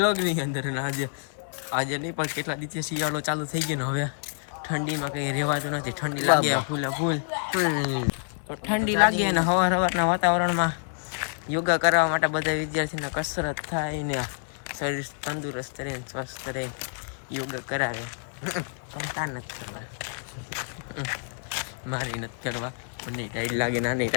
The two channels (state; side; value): silent; right; digital silence